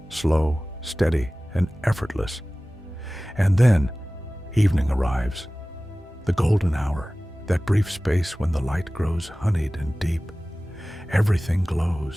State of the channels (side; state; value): both; normal; correlation 0.97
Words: slow, steady, and effortless. And then evening arrives, the golden hour, that brief space when the light grows honeyed and deep. Everything